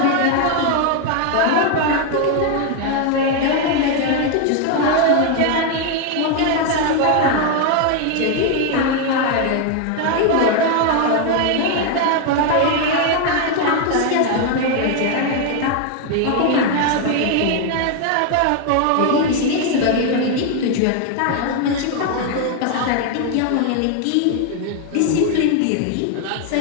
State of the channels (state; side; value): different; both; correlation 0.01